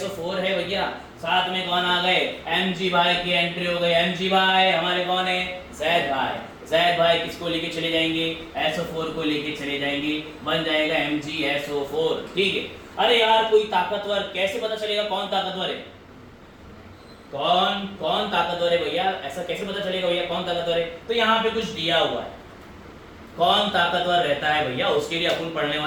है भैया, साथ में कौन आ गए, Mg भाई की एंट्री हो गई। Mg भाई हमारे कौन है, जैद भाई किसको लेके चले जाएंगे, SO4 को लेके चले जाएंगे, बन जाएगा MgSO4। ठीक है, अरे यार कोई ताकतवर, कैसे पता चलेगा कौन ताकतवर है, कौन ताकतवर है भैया, ऐसा कैसे पता चलेगा भैया कौन ताकतवर है, तो यहाँ पे कुछ दिया हुआ है, कौन ताकतवर रहता है भैया, उसके लिए अपन पढ़ने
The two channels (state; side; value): identical; both; correlation 1.00